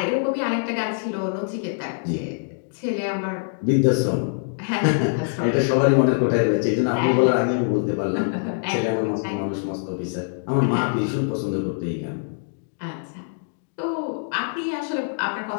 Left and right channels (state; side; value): silent; right; digital silence